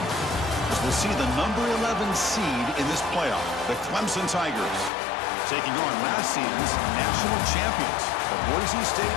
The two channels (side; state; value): right; drops out; at 4.9 s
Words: As we'll see the number 11 seed in this playoff, the Clemson Tigers, taking on last season's national champions, the Boise State